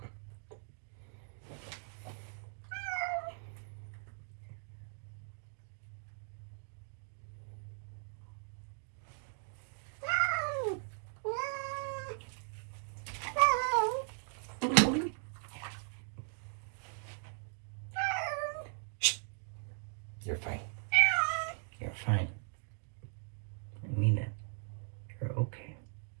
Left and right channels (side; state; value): left; silent; 52 dB below the other